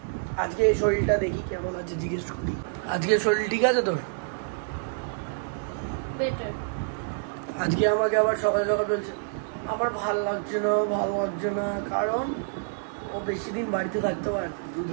আজকে শরীরটা দেখি কেমন আছে জিজ্ঞেস করি আজকে শরীর ঠিক আছে তোর বেটার আজকে আমাকে আবার সকাল সকাল বলছে আমার ভালো লাগছে না কারণ ও বেশি দিন বাড়িতে থাকতে পারে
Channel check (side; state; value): left; silent; 60 dB below the other